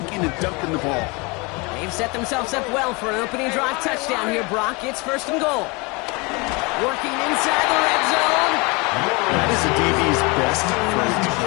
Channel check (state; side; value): quieter; right; 27.7 dB